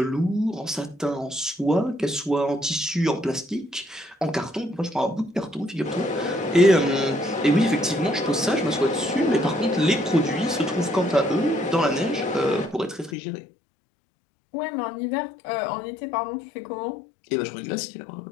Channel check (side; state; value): right; drops out; at 13.2 s